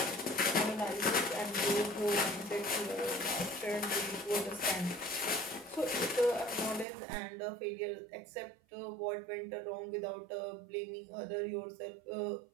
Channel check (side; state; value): left; drops out; at 6.9 s